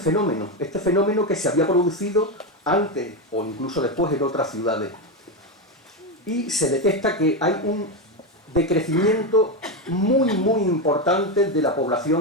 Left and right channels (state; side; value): normal; both; correlation 0.11